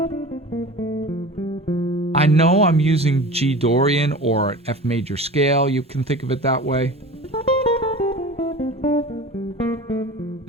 I know I'm using G Dorian or an F major scale. You can think of it that way. And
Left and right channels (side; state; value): both; normal; correlation 0.36